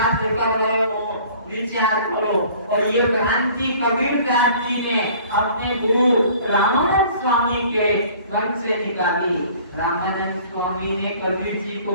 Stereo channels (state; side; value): inverted; both; correlation -0.51